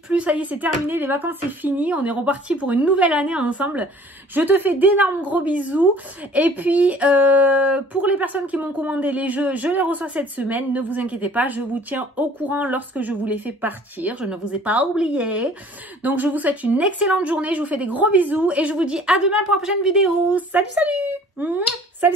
plus. Ça y est, c'est terminé. Les vacances, c'est fini. On est reparti pour une nouvelle année ensemble. Je te fais d'énormes gros bisous. Et puis, pour les personnes qui m'ont commandé les jeux, je les reçois cette semaine. Ne vous inquiétez pas. Je vous tiens au courant lorsque je vous les fais partir. Je ne vous ai pas oublié. Donc, je vous souhaite une excellente journée. Je vous fais des gros bisous. Et je vous dis à demain pour la prochaine vidéo. Salut, salut!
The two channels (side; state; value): both; normal; correlation 0.52